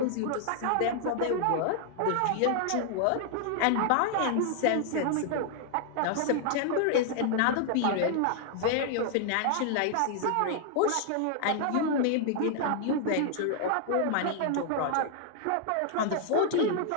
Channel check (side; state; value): both; different; correlation 0.00